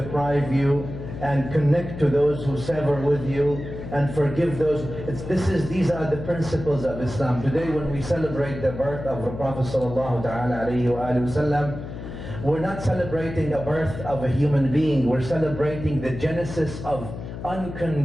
you, and connect to those who sever with you, and forgive those. These are the principles of Islam. Today, when we celebrate the birth of the Prophet sallallahu ta'ala alayhi wa sallam, we're not celebrating the birth of a human being, we're celebrating the genesis of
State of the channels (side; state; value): left; noise; hum, 9 dB below the sound